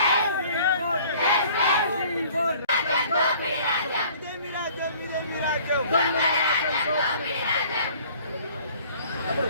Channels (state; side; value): inverted; both; correlation -0.53